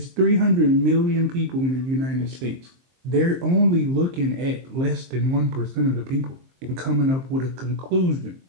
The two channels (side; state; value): left; late; 23 ms